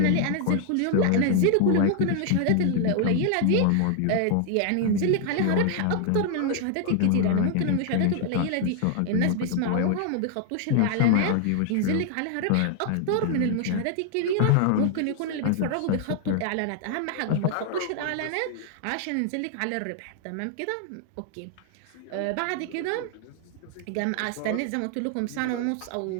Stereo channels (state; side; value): different; both; correlation 0.00